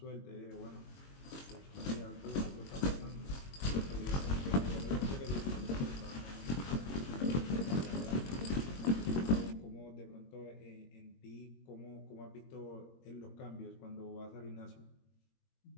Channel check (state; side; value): late; right; 22 ms